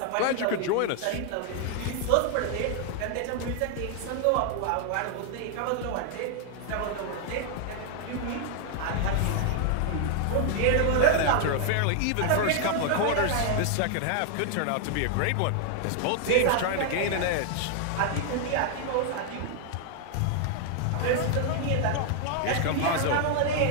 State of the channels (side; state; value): both; different; correlation 0.00